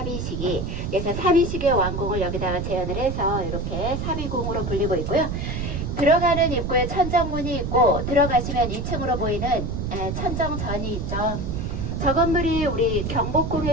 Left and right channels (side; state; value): right; noise; rumble, 3 dB below the sound